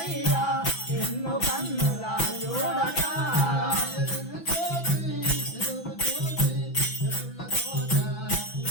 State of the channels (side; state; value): right; late; 6.0 ms